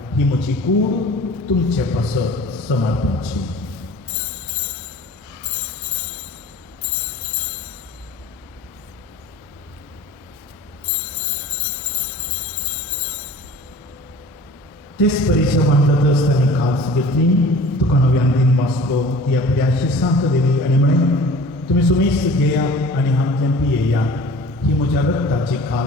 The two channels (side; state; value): both; normal; correlation 0.44